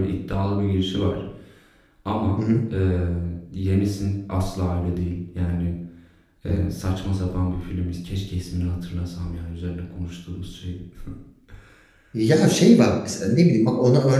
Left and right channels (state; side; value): identical; both; correlation 1.00